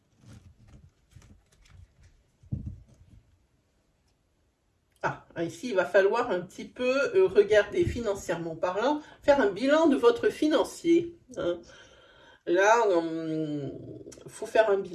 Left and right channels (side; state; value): both; identical; correlation 1.00